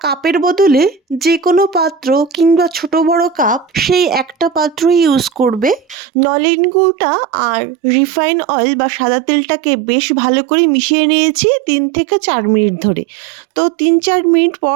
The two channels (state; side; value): drops out; left; at 6.0 s